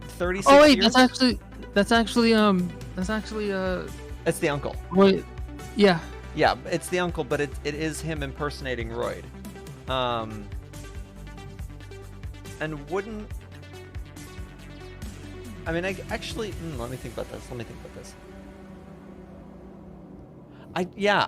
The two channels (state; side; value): identical; both; correlation 1.00